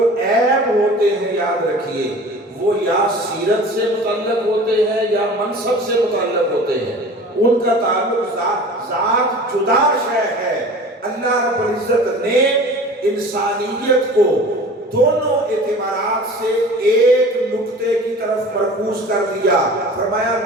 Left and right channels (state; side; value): normal; both; correlation 0.41